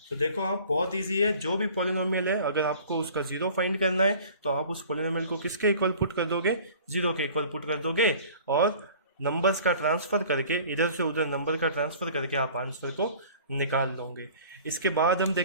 तो देखो आप, बहुत इजी है। जो भी पॉलिनोमियल है, अगर आपको उसका जीरो फाइंड करना है तो आप उस पॉलिनोमियल को किसके इक्वल पुट कर दोगे, जीरो के इक्वल पुट कर दोगे। और नंबर्स का ट्रांसफर करके, इधर से उधर नंबर का ट्रांसफर करके आप आंसर को निकाल लोगे। इसके बाद हम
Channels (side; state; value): both; inverted; correlation -0.47